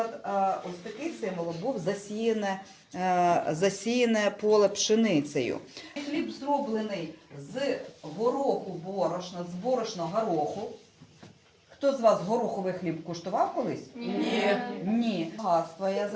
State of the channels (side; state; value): both; identical; correlation 1.00